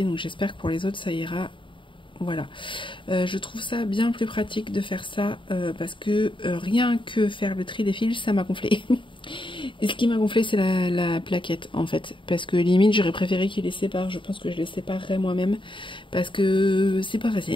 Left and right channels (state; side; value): late; right; 0.24 ms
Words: Donc j'espère que pour les autres, ça ira. Voilà, je trouve ça bien plus pratique de faire ça parce que rien que faire le tri des fils, ça m'a gonflé. Et ce qui m'a gonflé, c'est la plaquette en fait, parce que limite j'aurais préféré qu'ils les séparent. Je pense que je les séparerais moi-même parce que c'est pas